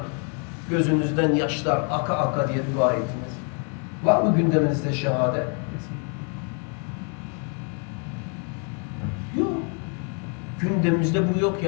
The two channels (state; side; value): quieter; right; 39.9 dB